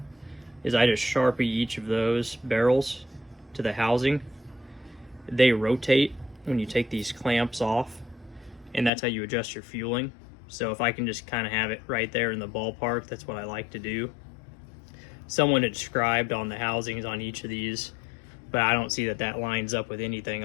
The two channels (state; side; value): drops out; right; at 8.9 s